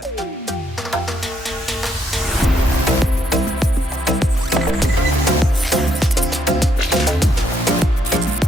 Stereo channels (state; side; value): normal; both; correlation 0.73